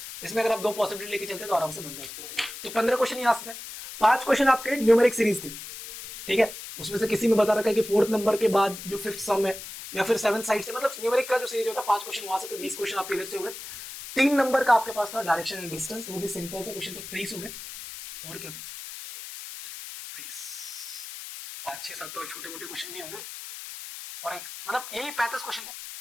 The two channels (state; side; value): noise; left; hiss, 11 dB below the sound